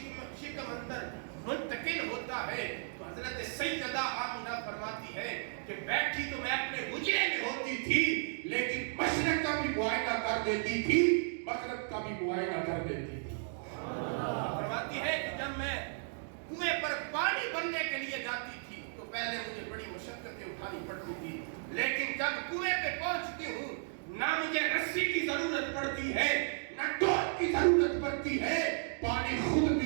اندر منتقل ہوتا ہے تو حضرت سیدہ آمینہ فرماتی ہے کہ بیٹھی تو میں اپنے حجرے میں ہوتی تھی لیکن مشرق کا بھی معائنہ کر دیتی تھی مغرب کا بھی معائنہ کر دیتی تھی فرماتی ہے کہ جب میں کنویں پر پانی بھرنے کے لیے جاتی تھی تو پہلے مجھے بڑی مشقتیں اٹھانی پڑتی تھی لیکن جب کنویں پہ پہنچتی ہوں نہ مجھے رسی کی ضرورت پڑتی ہے نہ ڈول کی ضرورت پڑتی ہے پانی خود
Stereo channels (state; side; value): silent; left; digital silence